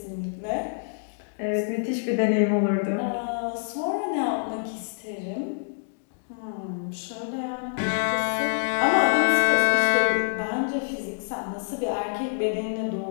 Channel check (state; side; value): silent; right; digital silence